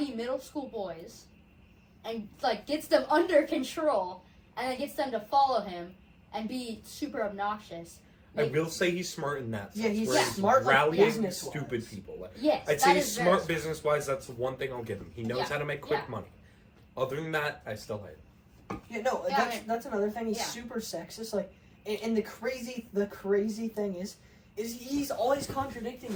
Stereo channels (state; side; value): identical; both; correlation 1.00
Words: middle school boys and, like, gets them under control and then gets them to follow him and be super obnoxious. I will say he's smart in that sense. Yeah, he's smart, like, business-wise. Stupid people. Like, yes, I'd say he's smart business-wise. That's the one thing I'll give him. He knows how to make quick money. Other than that, I still hate him. Yeah, no, that's another thing. He's super sexist. Like, and the crazy thing is he's always contradicting